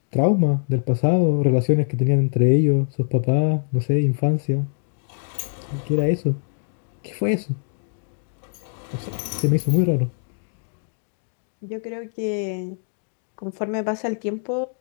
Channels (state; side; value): silent; right; digital silence